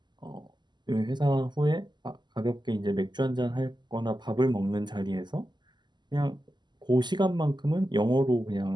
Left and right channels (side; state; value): left; late; 0.21 ms